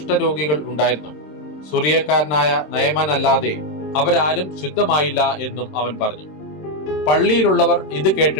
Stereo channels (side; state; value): right; late; 27 ms